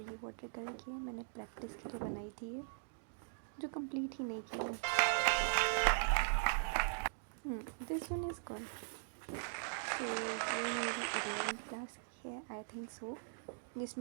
वाटर कलर की है। मैंने प्रैक्टिस के लिए बनाई थी ये, जो कंप्लीट ही नहीं की है। This one is good. ये मेरी 11th क्लास की है, आई थिंक सो,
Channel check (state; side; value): silent; left; digital silence